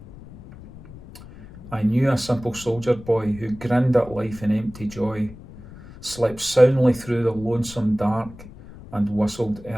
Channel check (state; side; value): noise; left; rumble, 17 dB below the sound